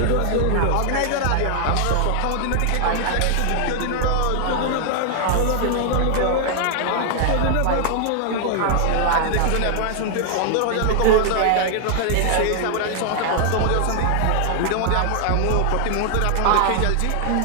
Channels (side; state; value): both; different; correlation 0.00